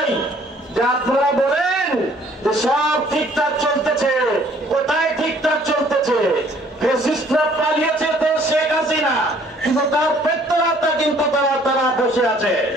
যে আপনারা বলেন যে সব ঠিকঠাক চলতেছে, কোথায় ঠিকঠাক চলতেছে? ফ্যাসিস্টরা পালিয়েছে তো শেখ হাসিনা, কিন্তু তার পেট্রোলাটা কিন্তু তারা বসে আছে।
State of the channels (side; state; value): both; normal; correlation 0.59